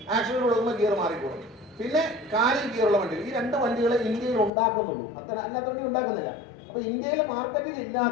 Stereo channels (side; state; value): right; drops out; at 4.5 s